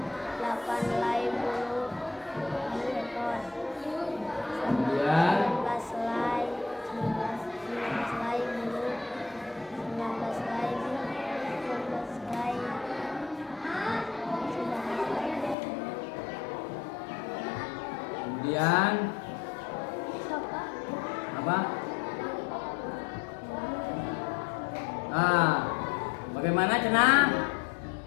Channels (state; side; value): drops out; right; at 15.6 s